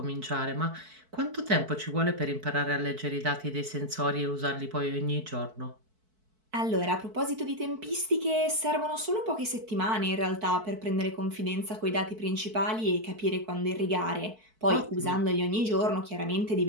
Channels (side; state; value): left; late; 4.5 ms